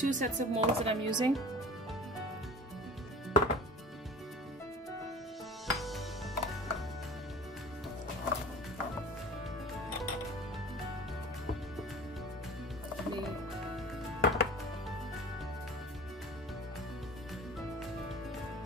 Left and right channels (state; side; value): normal; both; correlation 0.40